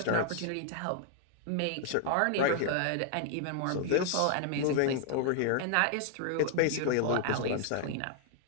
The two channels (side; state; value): both; different; correlation 0.00